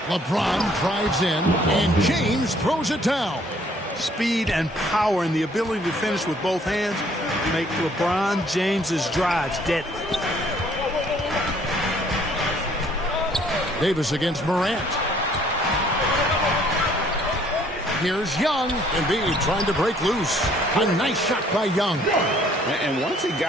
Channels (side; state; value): both; normal; correlation 0.61